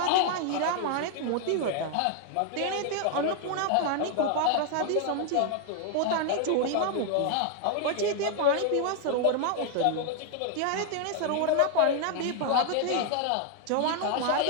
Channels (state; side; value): different; both; correlation 0.00